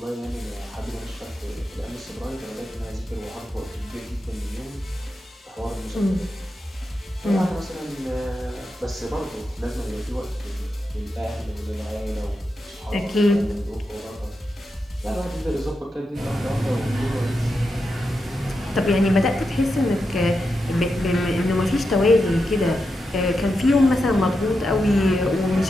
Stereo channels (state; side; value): normal; both; correlation 0.87